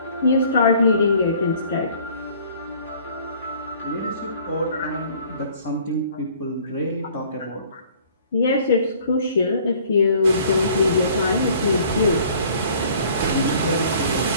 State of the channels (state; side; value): inverted; both; correlation -0.54